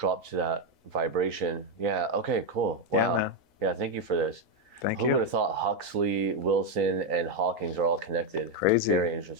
to that vibration. Yeah. Okay. Cool. Wow. Yeah, thank you for this. Thank Who you. would have thought Huxley, Wilson, and Hawkins are all connected? Crazy. Very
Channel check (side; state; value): both; normal; correlation 0.03